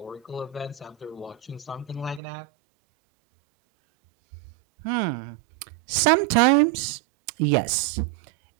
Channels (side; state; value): left; drops out; at 2.2 s